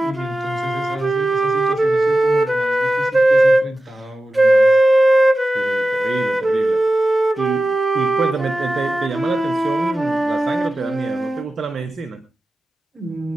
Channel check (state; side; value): normal; both; correlation 0.93